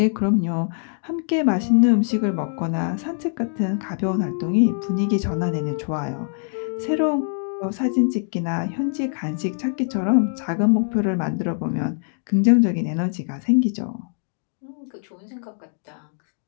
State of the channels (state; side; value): silent; right; digital silence